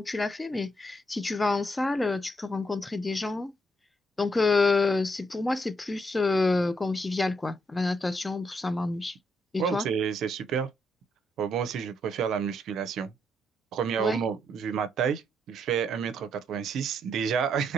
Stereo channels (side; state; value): both; normal; correlation 0.76